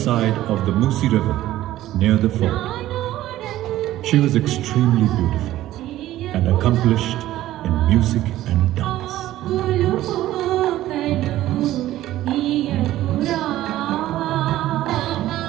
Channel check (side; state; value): left; quieter; 14.5 dB